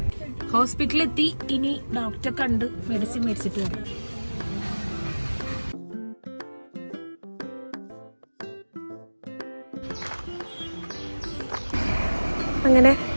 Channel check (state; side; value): inverted; both; correlation -1.00